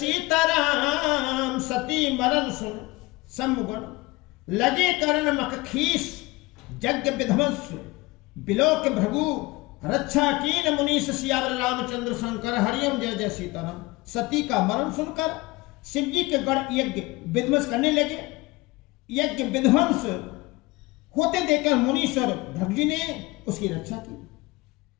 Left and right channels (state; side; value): quieter; right; 22.3 dB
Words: सती मरण सुन सम्मुगन, लगे करण मख खीस। यज्ञ विध्वंस बिलोक भृगु, रक्षा कीन मुनीष सियावर रामचंद्र शंकर हरिओम। जय जय सीताराम। सती का मरण सुनकर शिव जी के गढ़ यज्ञ विध्वंस करने लगे। यज्ञ विध्वंस होते देखकर मुनीश्वर भृगु जी ने उसकी रक्षा की।